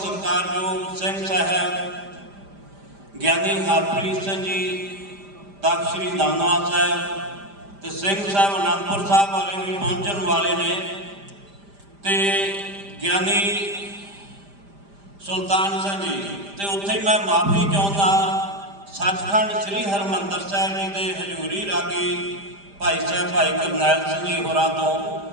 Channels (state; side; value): late; left; 5.0 ms